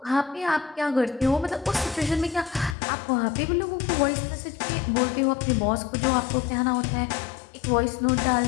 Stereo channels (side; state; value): right; drops out; at 2.8 s